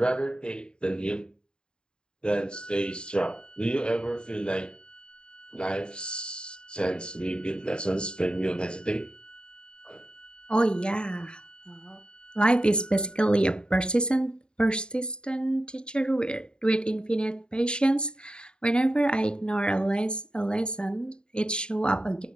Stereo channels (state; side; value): late; right; 0.050 ms